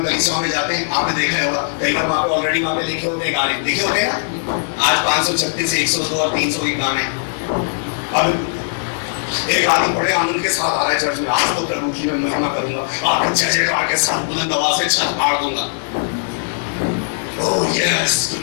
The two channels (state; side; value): silent; right; 66 dB below the other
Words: कलीसियाओं में जाते हैं, आपने देखा होगा, कई बार वहाँ पे ऑलरेडी वहाँ पे लिखे होते हैं गाने, लिखे होते हैं ना। आज 536 से 102 और 300 के गाने। अब एक आदमी बड़े आनंद के साथ आ रहा है चर्च में, आज तो प्रभु की मैं महिमा करूंगा, आपको जय जयकार के साथ बुलंद आवाज से छत फाड़ दूंगा। ओह यस,